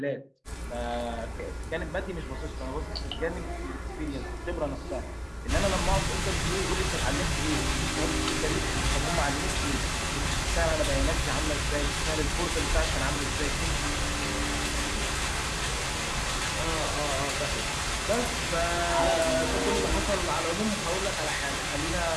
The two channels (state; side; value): identical; both; correlation 1.00